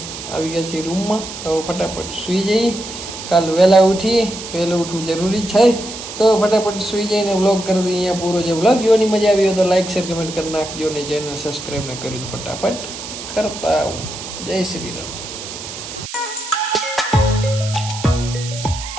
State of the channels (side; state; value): right; noise; hiss, 10 dB below the sound